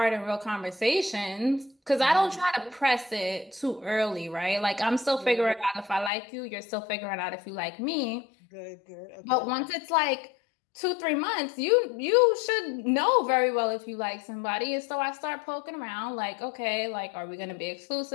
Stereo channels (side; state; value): right; drops out; at 6.1 s